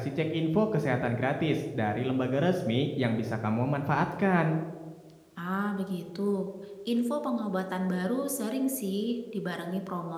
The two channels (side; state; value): both; identical; correlation 1.00